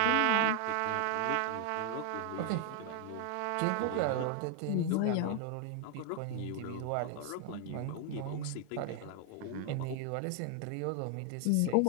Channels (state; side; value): different; both; correlation 0.00